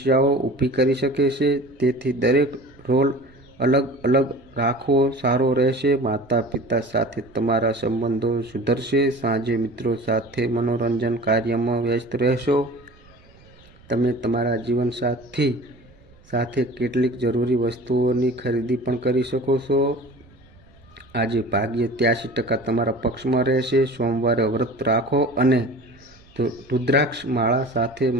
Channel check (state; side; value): noise; right; rumble, 27 dB below the sound